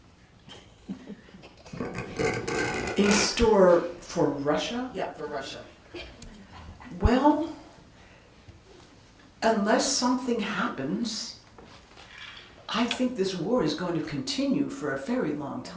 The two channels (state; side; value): identical; both; correlation 1.00